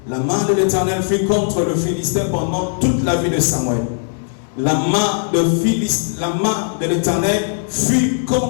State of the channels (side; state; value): right; silent; digital silence